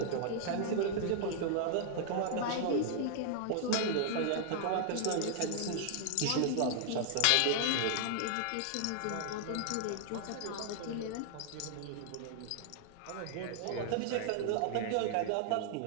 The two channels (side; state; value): both; different; correlation -0.01